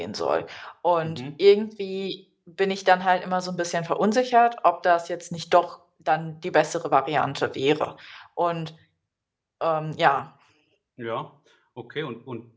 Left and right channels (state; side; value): identical; both; correlation 1.00